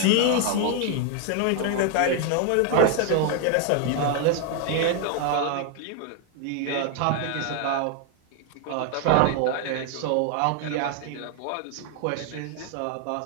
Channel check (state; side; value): different; both; correlation 0.01